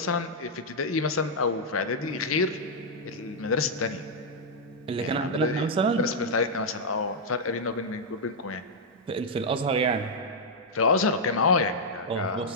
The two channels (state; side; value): normal; both; correlation -0.05